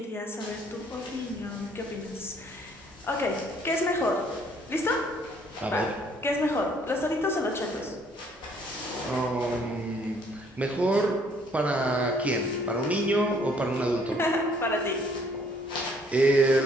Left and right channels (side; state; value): both; normal; correlation 0.62